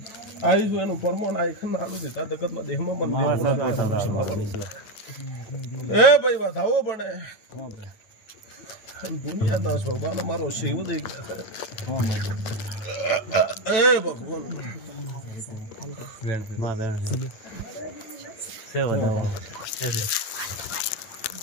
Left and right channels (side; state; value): right; late; 9.2 ms